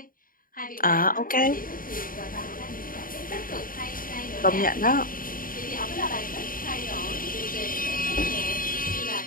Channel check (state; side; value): late; right; 0.41 ms